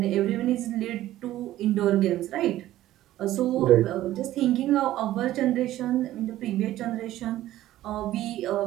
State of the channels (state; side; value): quieter; left; 14.4 dB